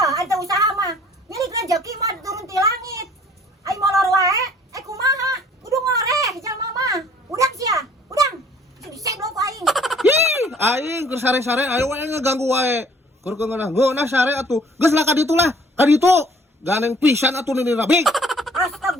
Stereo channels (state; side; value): normal; both; correlation 0.56